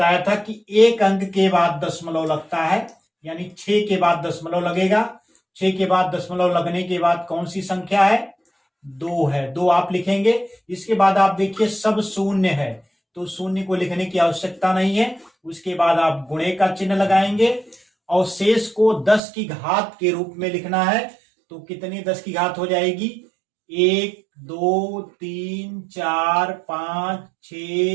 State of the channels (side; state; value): left; drops out; at 19.2 s